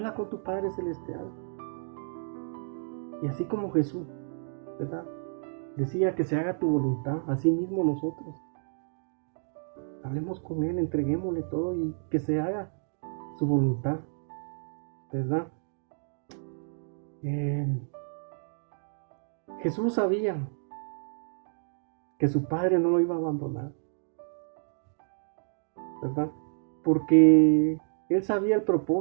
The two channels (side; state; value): left; silent; digital silence